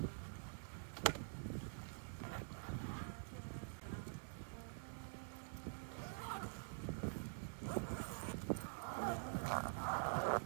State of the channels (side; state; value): left; silent; digital silence